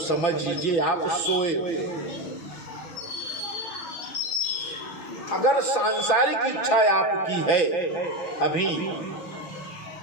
लीजिए आप सोए हुए। अगर सांसारिक इच्छा आपकी है अभी,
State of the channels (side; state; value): right; late; 5.9 ms